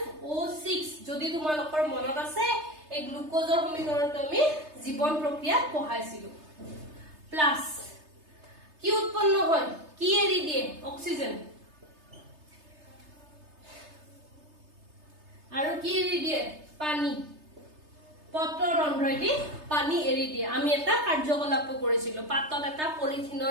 যদি তোমালোকৰ মনত আছে এই গ্লুকোজৰ সমীকৰণটো আমি জীৱন প্ৰক্ৰিয়াত পঢ়াইছিলো প্লাস কি উৎপন্ন হয় কি এৰি দিয়ে অক্সিজেন আৰু কি এৰি দিয়ে পানী পত্ৰৰ ৰন্ধ্ৰইদি পানী এৰি দিয়ে আমি এটা কাৰ্যকলাপ কৰিছিলো পাতত এটা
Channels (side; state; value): left; late; 3.3 ms